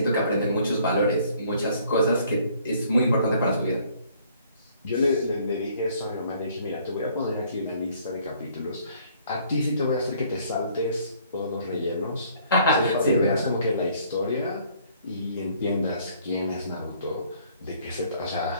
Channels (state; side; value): inverted; both; correlation -0.60